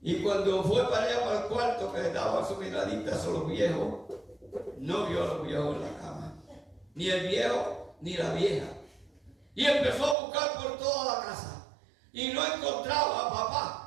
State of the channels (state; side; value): drops out; left; at 10.2 s